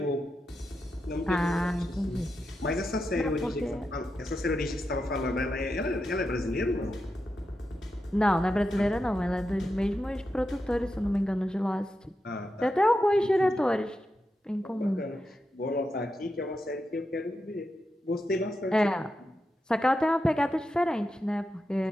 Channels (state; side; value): normal; both; correlation 0.88